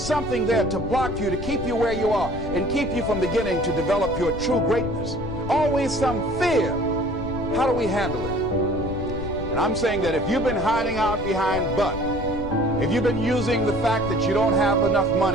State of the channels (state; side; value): noise; left; rumble, 9 dB below the sound